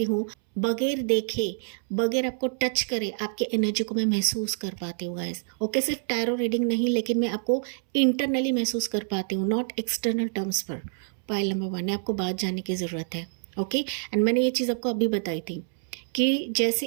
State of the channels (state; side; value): silent; left; 60 dB below the other